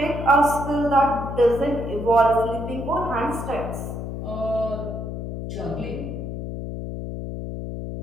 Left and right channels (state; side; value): noise; left; hum, 6 dB below the sound